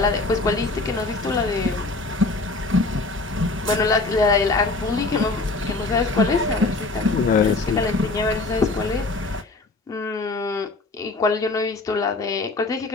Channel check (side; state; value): right; quieter; 3.3 dB